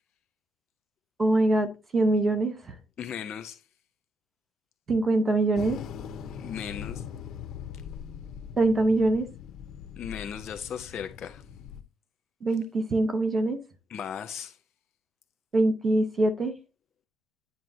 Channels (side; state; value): both; normal; correlation 0.83